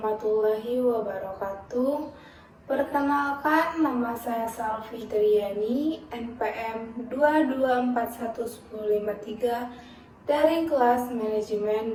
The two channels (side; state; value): both; identical; correlation 1.00